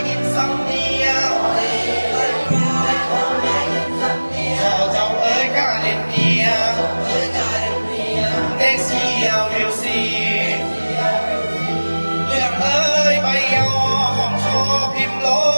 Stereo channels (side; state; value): both; inverted; correlation -1.00